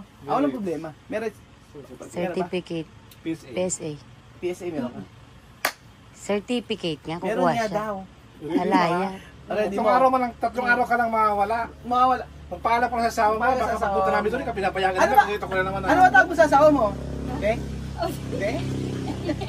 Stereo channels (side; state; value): both; identical; correlation 1.00